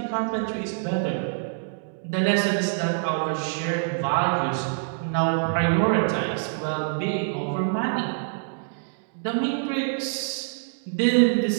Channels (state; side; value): silent; left; digital silence